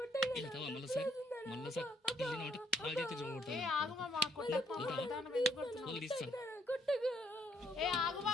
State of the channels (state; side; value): normal; both; correlation 0.68